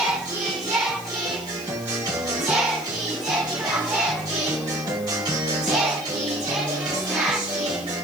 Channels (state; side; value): noise; left; hiss, 17 dB below the sound